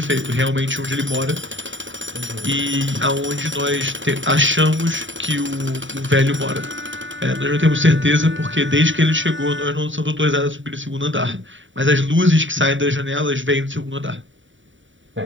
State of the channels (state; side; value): late; left; 0.55 ms